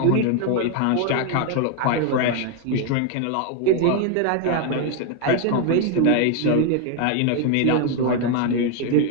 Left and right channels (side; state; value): both; different; correlation 0.01